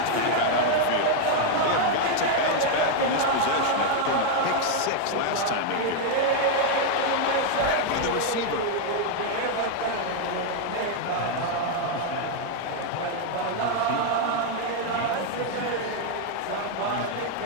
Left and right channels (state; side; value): different; both; correlation 0.00